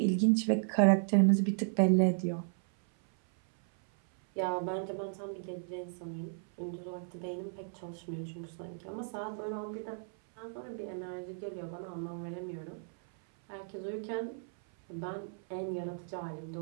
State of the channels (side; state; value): left; silent; 55 dB below the other